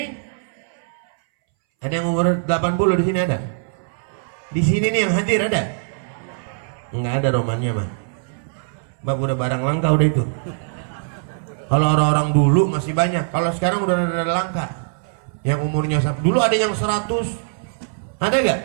Ada yang umur 80 di sini ada? Di sini nih yang hadir ada? Enggak ada romannya mah. Bab udah barang langka udah itu. Kalau orang-orang dulu masih banyak, kalau sekarang udah ada langka. Yang umurnya dulu ada yang 100. Ada gak?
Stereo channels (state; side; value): silent; left; 62 dB below the other